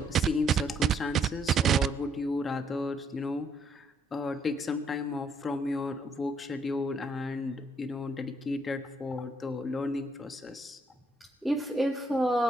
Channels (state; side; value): normal; both; correlation 0.70